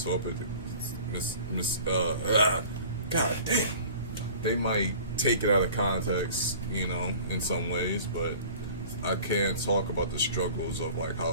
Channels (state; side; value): inverted; both; correlation -0.45